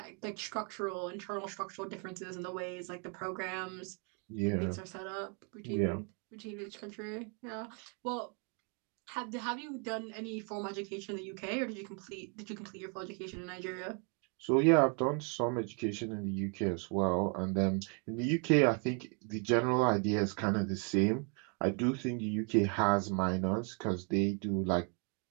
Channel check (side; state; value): left; quieter; 37.5 dB